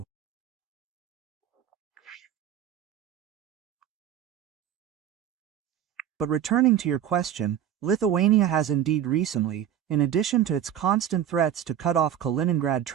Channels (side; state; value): left; quieter; 10.2 dB